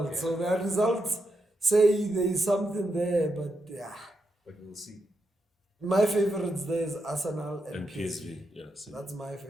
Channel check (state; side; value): normal; both; correlation 0.84